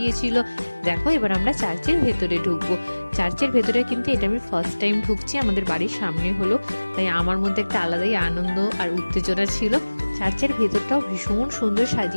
দেখো এবার আমরা চার্চের ভেতরে ঢুকবো। চার্চের ভেতরে কিন্তু এটা আমি ফার্স্ট টাইম ঢুকছি, আমাদের বাড়ির সামনে হলো, তাই আমার মধ্যে একটা আলাদাই আনন্দ আর উত্তেজনা ছিল। চার্চের ভেতরটাও ভীষণ সুন্দর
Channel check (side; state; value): both; inverted; correlation -1.00